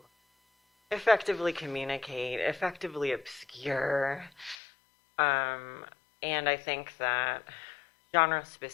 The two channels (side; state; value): right; drops out; at 4.5 s